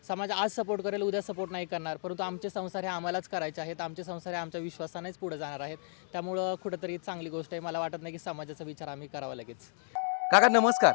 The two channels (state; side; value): silent; right; 56 dB below the other